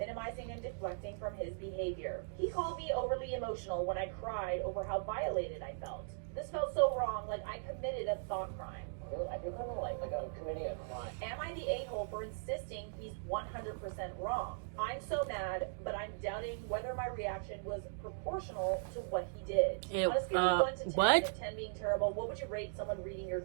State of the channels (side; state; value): left; silent; digital silence